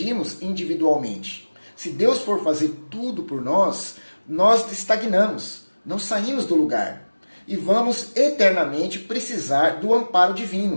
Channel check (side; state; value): both; inverted; correlation -1.00